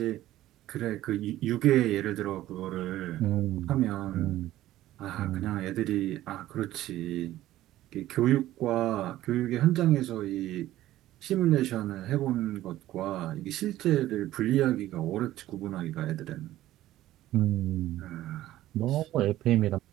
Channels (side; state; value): left; quieter; 14.6 dB